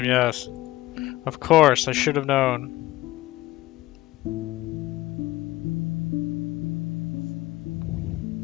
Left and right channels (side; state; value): right; quieter; 17.4 dB